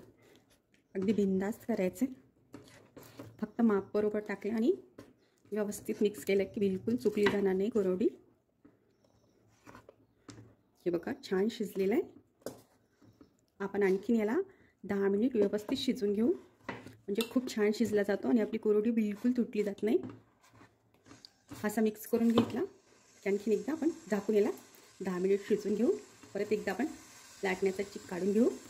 अगदी बिनधास्त करायचे, फक्त माप बरोबर टाकले आणि व्यवस्थित मिक्स केलं की बिलकुल चुकली जाणार नाही कुरवडी। हे बघा, छान शिजलेलं आहे। आपण आणखीन याला 10 मिनिट व्यवस्थित शिजवून घेऊ, म्हणजे खूप छान शिजला जातो आणि आपली कुरवडी बिलकुल तुटली जात नाही। असा मिक्स करून घेतला की आणखीन एकदा आपण झाकून याला 10 मिनिट शिजवून घेऊ। परत एकदा आपण लाटण्याचा चिक काढून घेऊ।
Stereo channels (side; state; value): both; identical; correlation 1.00